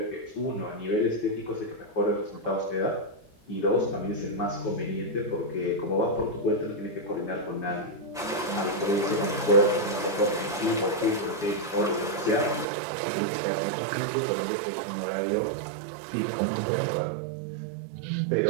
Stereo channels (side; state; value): left; drops out; at 12.7 s